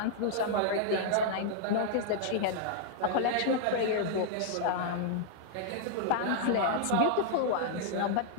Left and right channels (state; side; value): different; both; correlation -0.01